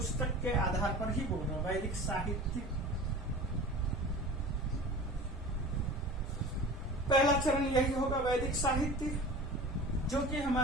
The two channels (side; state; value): both; normal; correlation 0.37